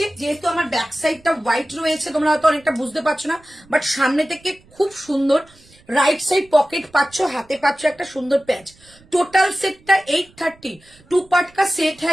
যেহেতু আমার ব্যাক সাইডটা হোয়াইট রয়েছে তোমরা হয়তো অনেকটা বুঝতে পারছো না, বাট সামনে থেকে খুব সুন্দর রাইট সাইড পকেট পাচ্ছ, हाथे पाच्छ একটা সুন্দর पैच। टोटल सेट का 830, 2 पार्ट का सेट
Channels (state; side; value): noise; right; rumble, 28 dB below the sound